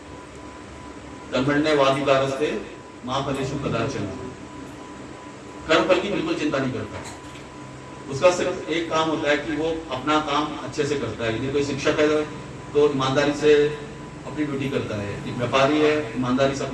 कर्मण्येवाधिकारस्ते मा फलेषु कदाचन। कर्म फल की बिल्कुल चिंता नहीं करता। उसका सिर्फ एक काम होता है कि वो अपना काम अच्छे से करता है। यदि कोई शिक्षक है तो ईमानदारी से अपनी ड्यूटी करता है। एक व्यापारी है ईमानदारी से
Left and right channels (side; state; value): both; identical; correlation 1.00